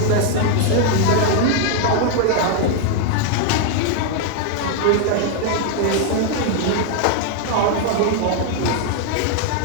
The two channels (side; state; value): both; different; correlation 0.00